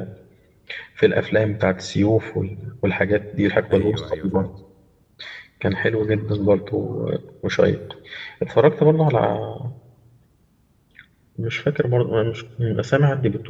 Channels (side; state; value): both; identical; correlation 1.00